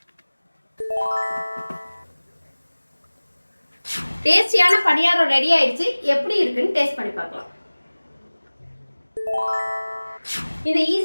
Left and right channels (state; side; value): inverted; both; correlation -1.00